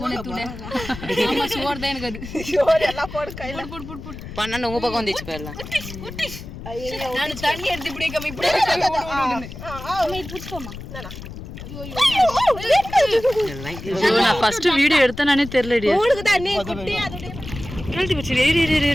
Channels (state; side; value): noise; left; rumble, 12 dB below the sound